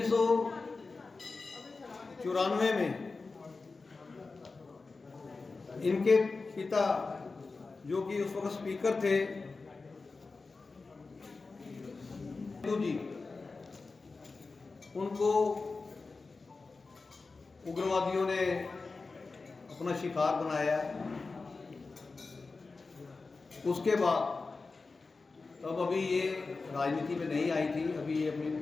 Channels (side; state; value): right; quieter; 4.0 dB